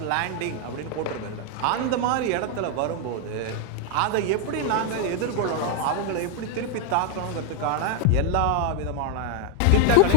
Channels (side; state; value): both; different; correlation 0.01